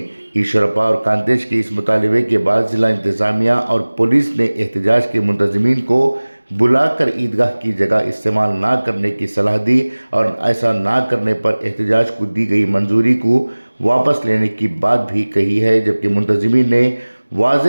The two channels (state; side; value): inverted; both; correlation -1.00